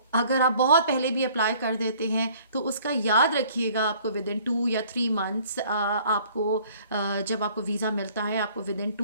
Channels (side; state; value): both; inverted; correlation -0.55